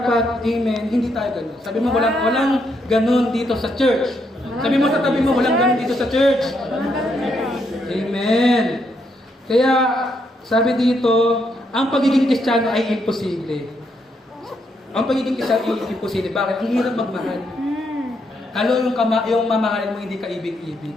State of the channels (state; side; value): normal; both; correlation 0.77